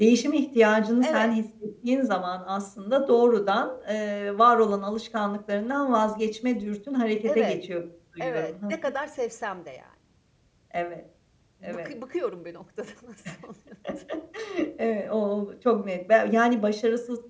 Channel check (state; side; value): identical; both; correlation 1.00